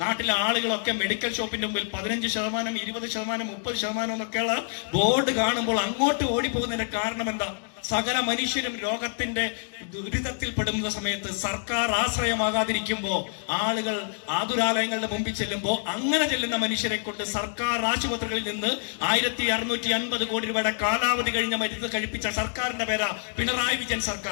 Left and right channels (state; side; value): silent; right; digital silence